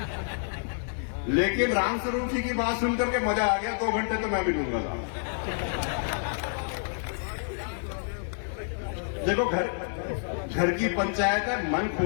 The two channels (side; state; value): right; silent; digital silence